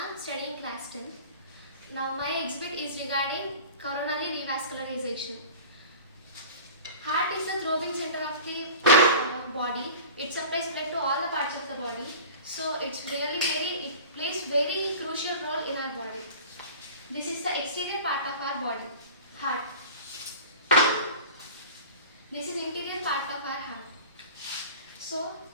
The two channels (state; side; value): inverted; both; correlation -0.39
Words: studying class 10. Now my exhibit is regarding coronary revascularization. Heart is the throbbing center of the body. It supplies blood to all the parts of the body. So it plays very crucial role in our body. This is the exterior part of our body, heart. This is interior part of our heart. So